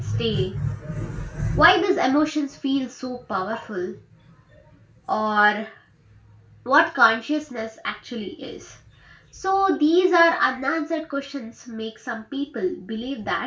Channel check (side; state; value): both; identical; correlation 1.00